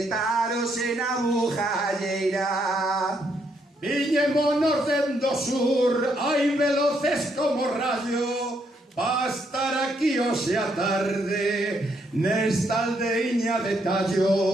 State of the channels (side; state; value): both; normal; correlation 0.74